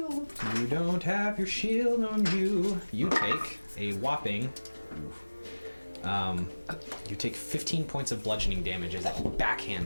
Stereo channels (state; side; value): inverted; both; correlation -1.00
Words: You don't have your shield on you. You take a whopping. You take 15 points of bludgeoning damage as it